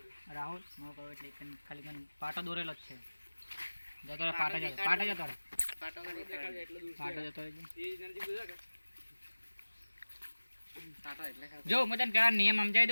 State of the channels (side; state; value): both; inverted; correlation -1.00